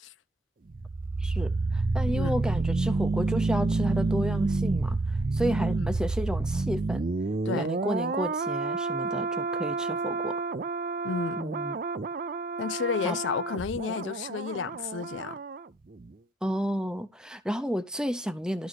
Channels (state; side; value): normal; both; correlation 0.65